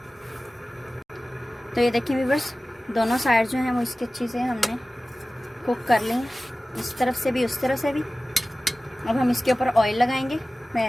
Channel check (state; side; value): normal; both; correlation 0.97